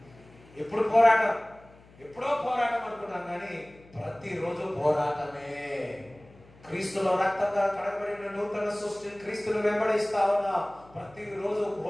ఎప్పుడు పోరాటం? ఎప్పుడో పోరాటం అనుకున్నాం, కానీ ప్రతిరోజు పోరాటమే. క్రీస్తులో రక్తంగా కడగబడిన నూతన సృష్టి క్రీస్తును వెంబడిస్తా ఉన్నా, ప్రతిరోజు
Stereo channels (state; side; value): noise; left; hum, 25 dB below the sound